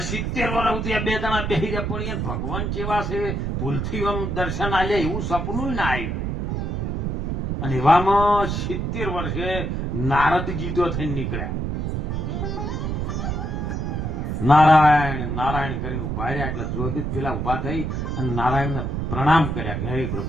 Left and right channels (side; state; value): right; noise; rumble, 2 dB below the sound